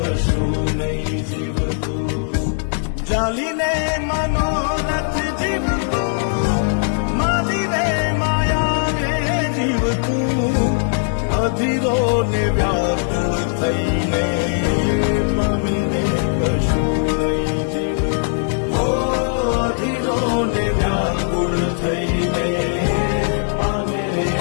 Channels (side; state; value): right; silent; digital silence